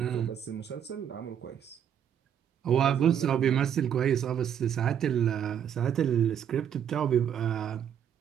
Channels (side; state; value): left; quieter; 9.0 dB